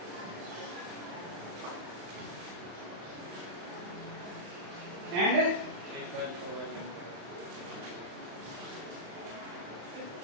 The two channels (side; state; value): left; late; 35 ms